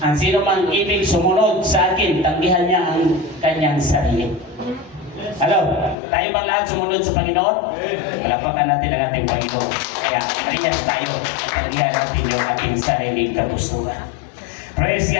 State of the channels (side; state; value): right; drops out; at 6.0 s